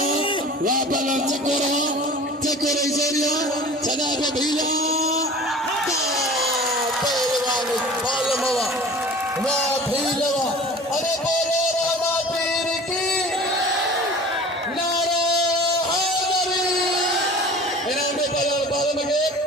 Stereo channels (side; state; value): both; normal; correlation 0.42